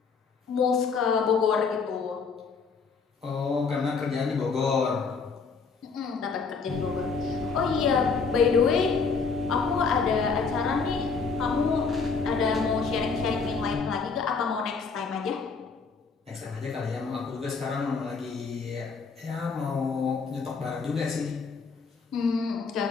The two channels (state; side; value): quieter; right; 5.0 dB